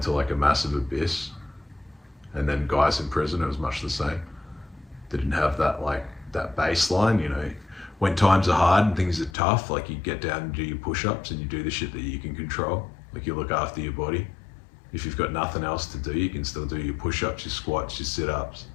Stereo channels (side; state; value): right; drops out; at 9.3 s